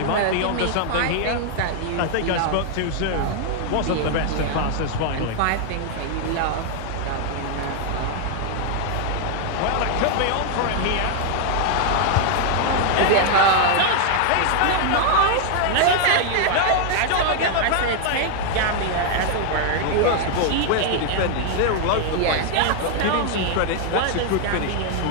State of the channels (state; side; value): different; both; correlation 0.00